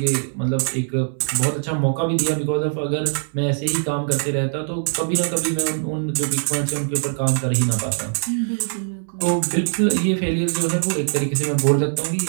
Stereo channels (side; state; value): left; silent; 64 dB below the other